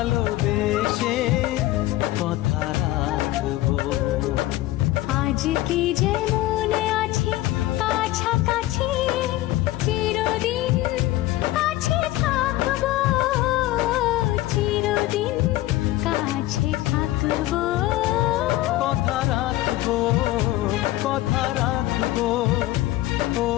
কথা রাখবো। আজকে যেমন আছি কাছাকাছি, চিরদিন কাছে থাকবো, চিরদিন কাছে থাকবো। কথা রাখবো, কথা রাখবো, ও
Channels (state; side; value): quieter; right; 16.5 dB